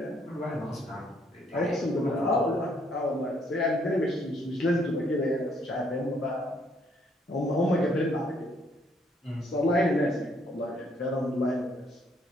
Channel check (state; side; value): normal; both; correlation 0.68